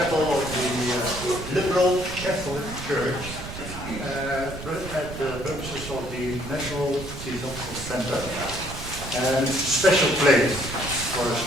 of the liberal Catholic Church at the purposes of the National Theosophical Center. And it's a special place for a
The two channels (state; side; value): noise; right; rumble, 10 dB below the sound